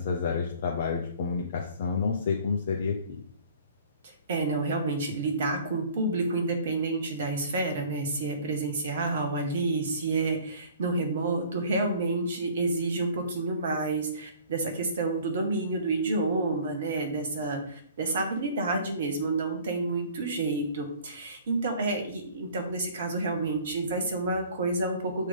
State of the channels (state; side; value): inverted; both; correlation -0.50